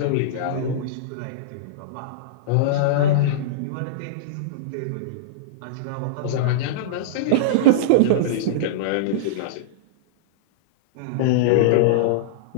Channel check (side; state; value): both; different; correlation -0.03